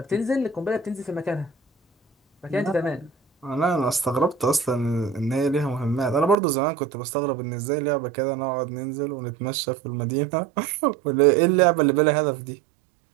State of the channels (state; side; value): drops out; left; at 6.4 s